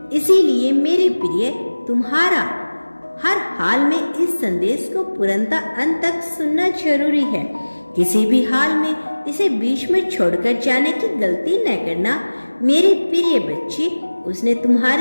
इसीलिए मेरे प्रिय, तुम्हारा हर हाल में इस संदेश को पूर्णतः अंत तक सुनना जरूरी है। किसी भी हाल में इसे बीच में छोड़कर जाने की गलती न करना। मेरे प्रिय बच्चे, उसने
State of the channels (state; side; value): inverted; both; correlation -1.00